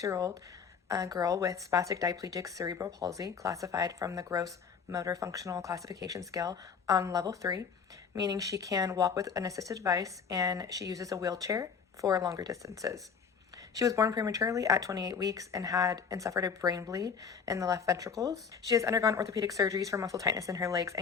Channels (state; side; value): quieter; right; 6.3 dB